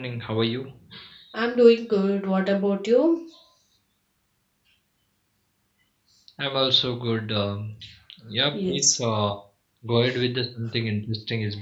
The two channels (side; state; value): both; identical; correlation 1.00